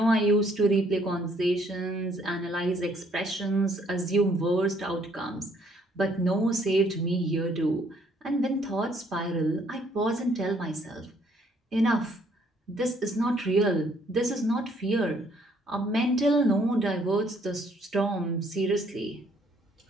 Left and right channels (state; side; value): normal; both; correlation 0.65